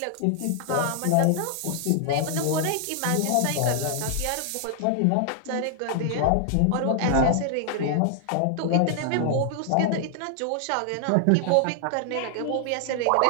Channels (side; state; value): both; different; correlation 0.00